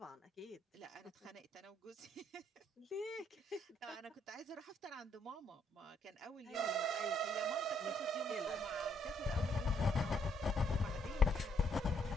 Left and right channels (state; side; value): normal; both; correlation 0.70